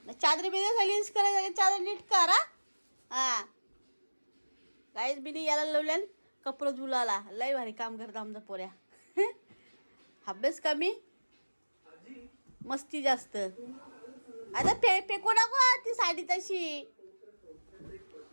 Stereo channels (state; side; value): inverted; both; correlation -1.00